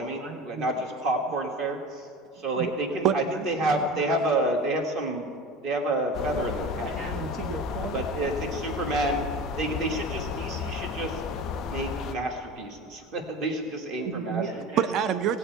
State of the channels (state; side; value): normal; both; correlation 0.33